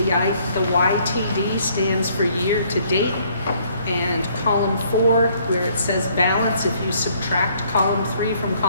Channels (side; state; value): both; inverted; correlation -0.64